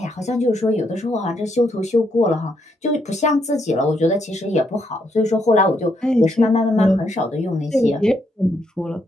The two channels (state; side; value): normal; both; correlation 0.76